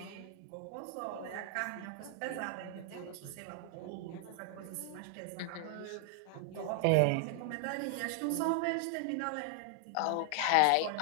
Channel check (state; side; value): different; both; correlation 0.00